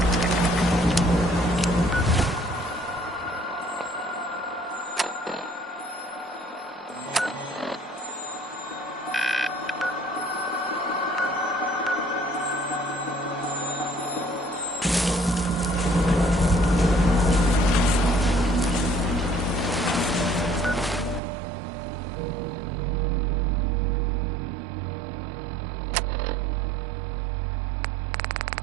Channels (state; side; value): drops out; left; at 21.2 s